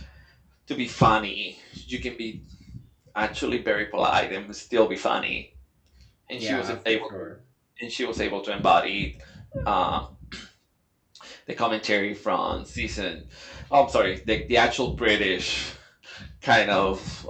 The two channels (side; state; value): both; identical; correlation 1.00